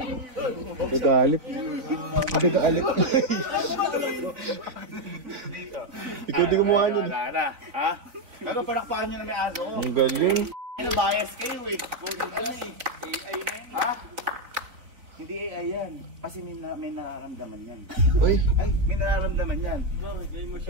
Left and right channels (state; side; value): late; left; 4.0 ms